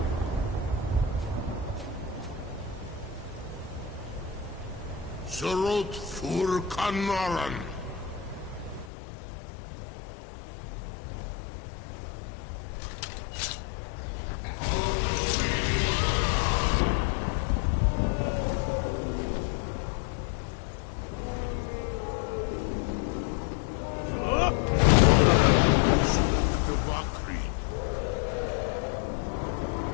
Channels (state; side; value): drops out; right; at 8.9 s